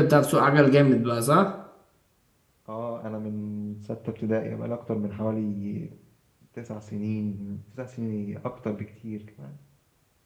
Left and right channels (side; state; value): both; identical; correlation 1.00